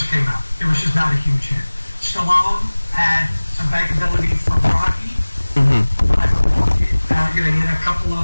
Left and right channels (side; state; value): both; inverted; correlation -1.00